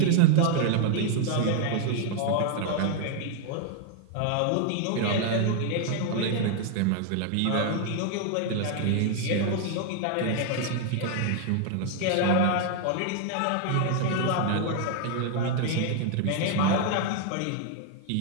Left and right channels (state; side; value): different; both; correlation 0.00